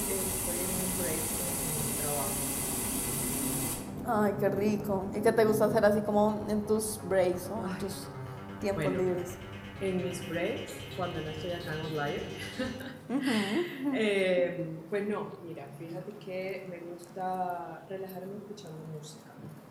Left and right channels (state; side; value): identical; both; correlation 1.00